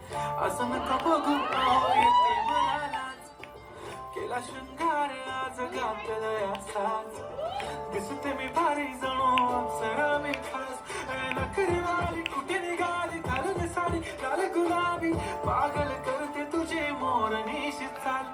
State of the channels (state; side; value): identical; both; correlation 1.00